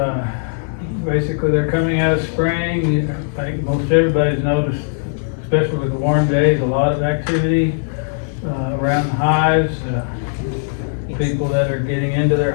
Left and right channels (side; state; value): right; silent; digital silence